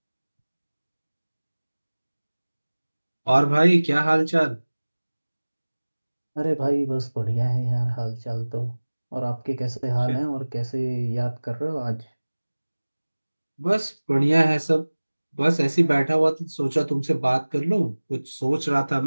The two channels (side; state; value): both; inverted; correlation -1.00